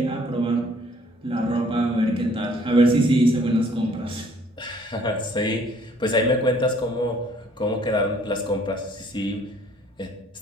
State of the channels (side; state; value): both; normal; correlation 0.59